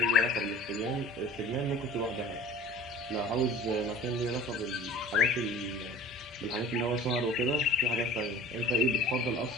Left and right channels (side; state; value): both; normal; correlation 0.44